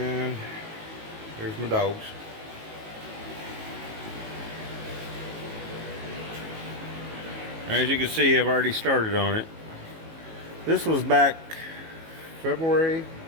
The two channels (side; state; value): left; late; 18 ms